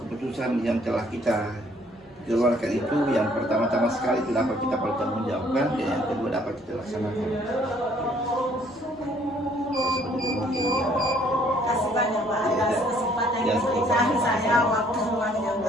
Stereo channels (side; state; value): both; normal; correlation 0.62